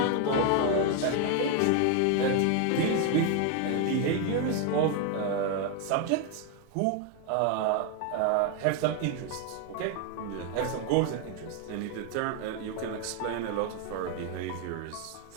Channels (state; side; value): different; both; correlation 0.01